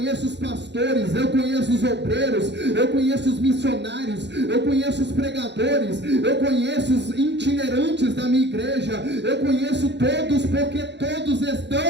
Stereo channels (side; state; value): left; late; 0.51 ms